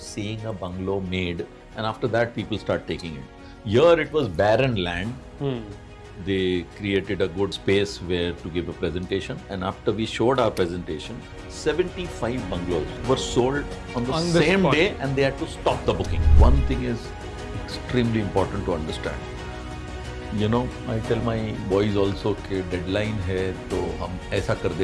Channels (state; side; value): identical; both; correlation 1.00